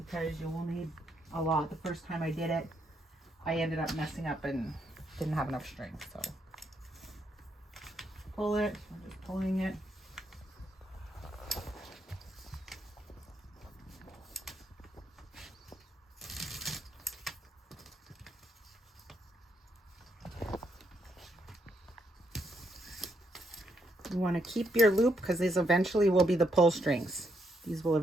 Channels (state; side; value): normal; both; correlation 0.76